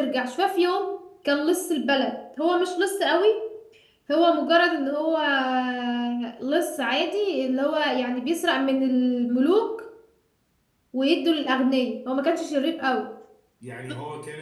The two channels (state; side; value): identical; both; correlation 1.00